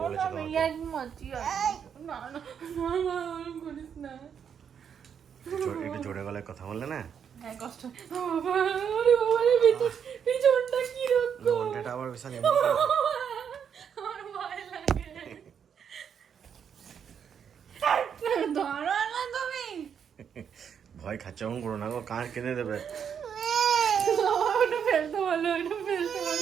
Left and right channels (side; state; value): left; quieter; 7.7 dB